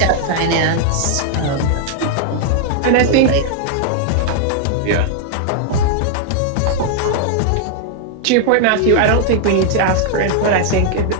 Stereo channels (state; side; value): different; both; correlation 0.00